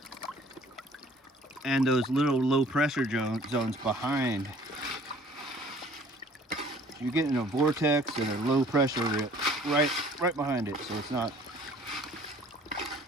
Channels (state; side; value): normal; both; correlation 0.54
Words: those little low pressure zones behind. You're getting a vortex and a low pressure right behind it, so it's not